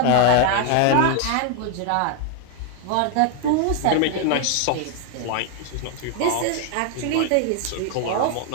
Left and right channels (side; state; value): both; different; correlation 0.00